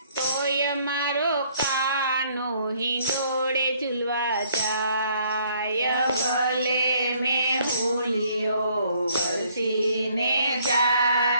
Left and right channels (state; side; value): inverted; both; correlation -0.64